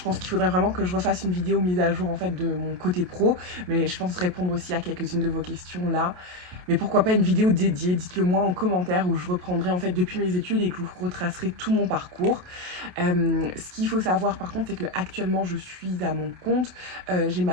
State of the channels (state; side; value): late; left; 28 ms